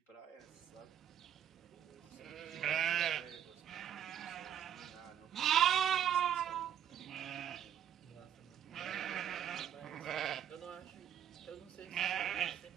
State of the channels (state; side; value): quieter; left; 9.7 dB